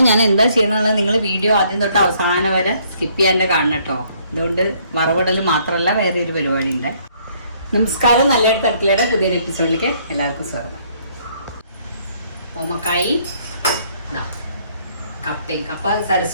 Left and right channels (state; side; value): inverted; both; correlation -0.65